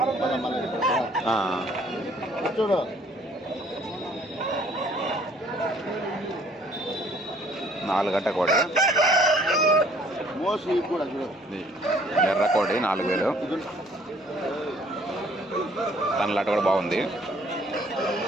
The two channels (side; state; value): both; normal; correlation 0.59